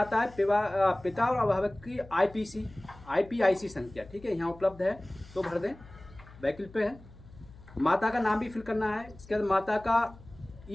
है पिता और अभिभावक की आईपीआईसी संख्या, ठीक है, यहाँ उपलब्ध है तो भर दें, वैकल्पिक है। माता का नाम भी फिल करना है। इसके बाद माता का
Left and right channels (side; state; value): left; noise; hum, 21 dB below the sound